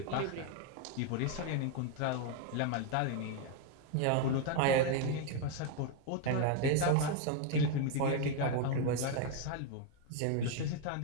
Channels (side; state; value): both; different; correlation 0.01